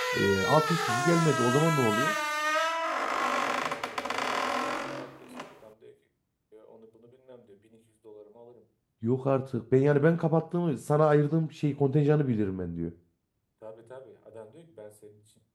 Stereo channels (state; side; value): identical; both; correlation 1.00